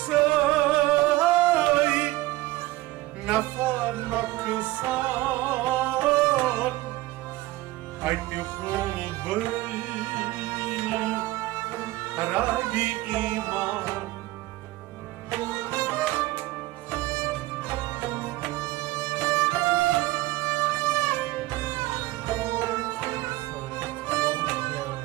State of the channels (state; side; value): quieter; left; 18.4 dB